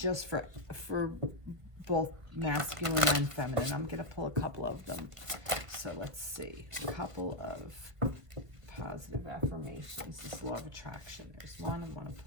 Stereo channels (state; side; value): late; left; 1.3 ms